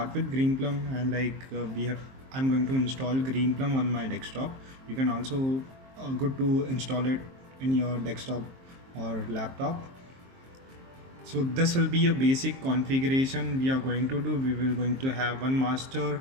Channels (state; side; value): late; left; 23 ms